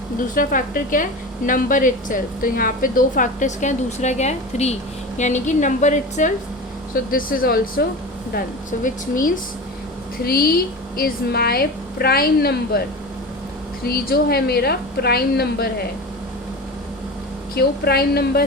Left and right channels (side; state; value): both; normal; correlation 0.30